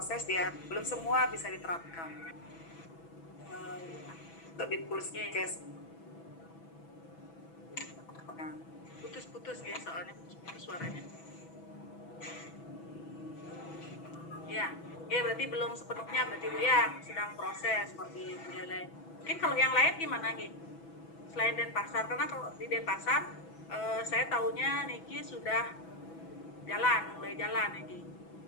ya, belum semua bisa diterapkan. Untuk di Puskes. Putus ya, soalnya putus suaranya. Ya, berarti belum sepenuhnya berarti Bu ya, sedang proses seperti Buleleng. Mungkin kalau yang lain gimana nih? Selain Denpasar, karena kalau di Denpasar saya tahunya Niki sudah mulai jalan Niki.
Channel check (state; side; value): late; right; 6.1 ms